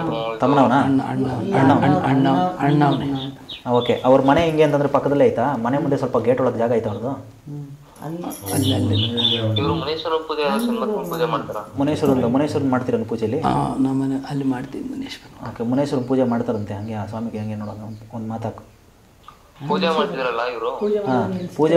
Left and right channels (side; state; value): both; identical; correlation 1.00